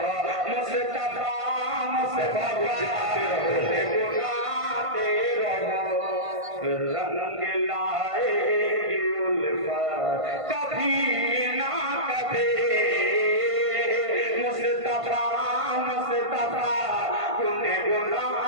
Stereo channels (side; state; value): left; late; 1.5 ms